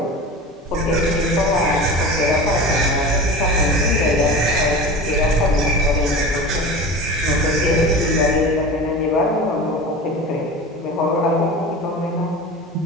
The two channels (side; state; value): both; normal; correlation 0.32